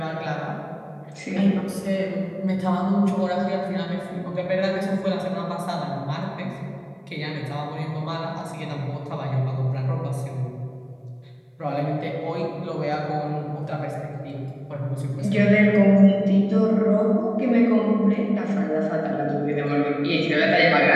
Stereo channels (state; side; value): identical; both; correlation 1.00